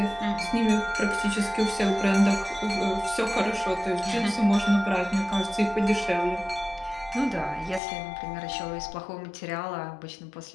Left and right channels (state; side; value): drops out; right; at 7.8 s